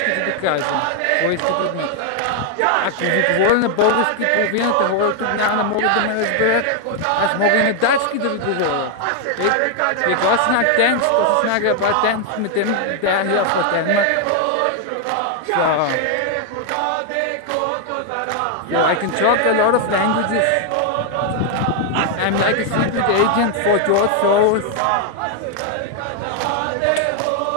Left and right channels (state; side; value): different; both; correlation 0.00